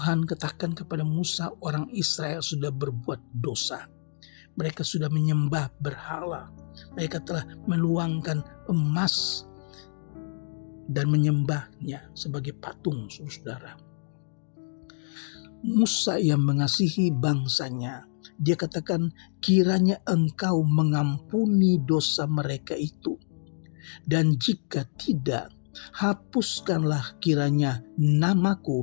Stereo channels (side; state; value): right; silent; digital silence